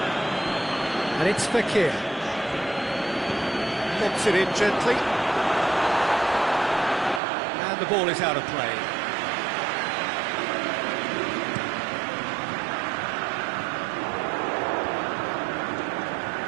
And it's Fekir. Lobs it in gently. And the ball is out of play.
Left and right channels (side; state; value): left; drops out; at 7.2 s